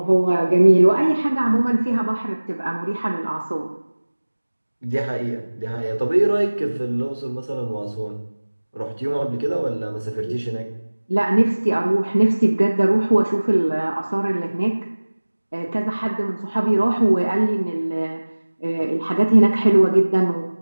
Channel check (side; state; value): both; inverted; correlation -1.00